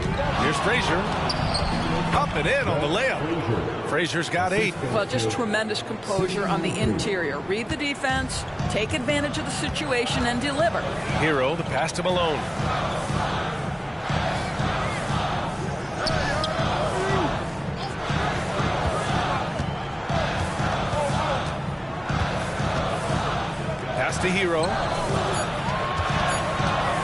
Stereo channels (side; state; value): both; identical; correlation 1.00